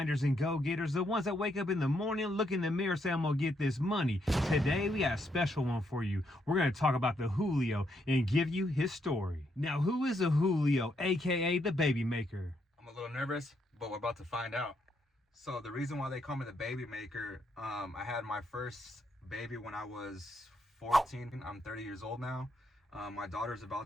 and go-getters, the ones that wake up in the morning, look in the mirror, say, I'm gonna get this money. Today, we got a special one for you. We're gonna talk about the Julio and give you his story. Now, who is a Julio, aka the baby maker? I'm a little nervous, but we're about to find out. So the reason why they call me the baby maker, I had my first baby when I was 14. I'm 30 years old now. My daughter's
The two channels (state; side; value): normal; both; correlation 0.76